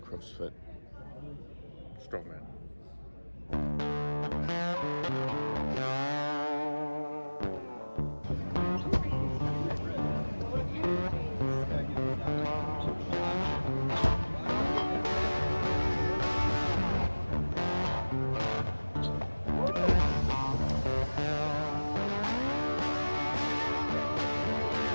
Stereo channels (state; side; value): inverted; both; correlation -1.00